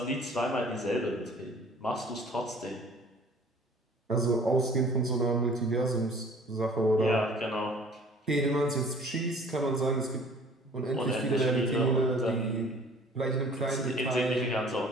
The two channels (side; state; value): both; normal; correlation 0.51